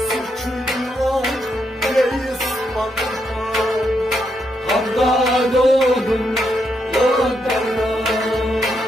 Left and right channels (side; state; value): both; normal; correlation 0.79